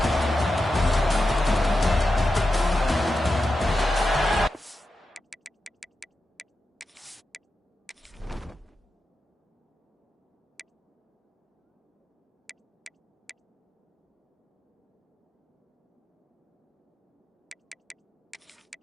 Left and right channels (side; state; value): both; normal; correlation 0.90